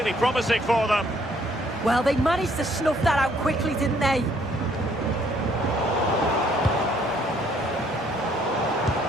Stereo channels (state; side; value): normal; both; correlation 0.65